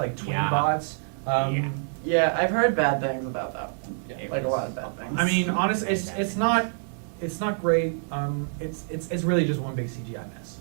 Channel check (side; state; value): left; silent; digital silence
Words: twin Yeah. bots. Yeah. Yeah, I've heard bad things about that one. Yeah. It Like a was- lot of bad things. I mean, honestly, Very it's bad it's things. not great. It's really just one big CGI mess,